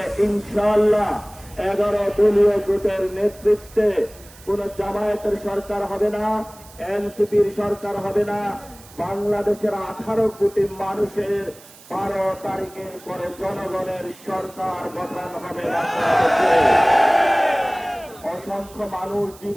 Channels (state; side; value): noise; right; hiss, 22 dB below the sound